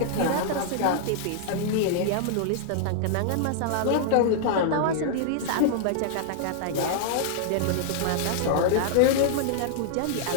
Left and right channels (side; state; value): both; different; correlation -0.01